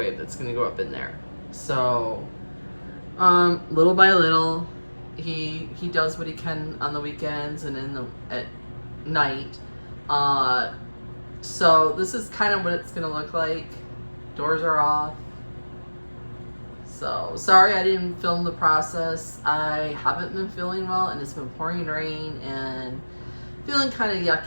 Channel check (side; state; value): both; inverted; correlation -1.00